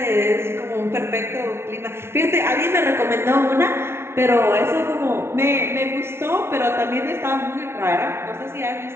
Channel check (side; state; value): left; late; 0.12 ms